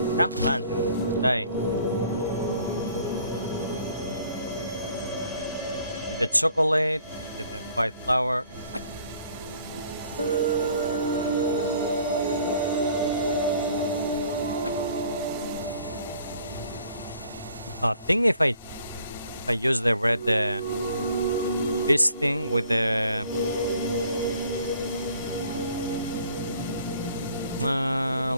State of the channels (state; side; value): inverted; both; correlation -0.58